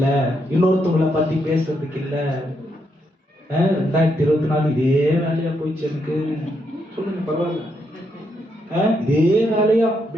இன்னொருத்தவங்களை பத்தி பேசுறதுக்கு இல்ல. 2024 இதே வேலையா போயிடுச்சு எனக்கு. சொல்லுங்க, பரவாயில்ல. இதே வேலையா,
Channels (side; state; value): both; normal; correlation 0.78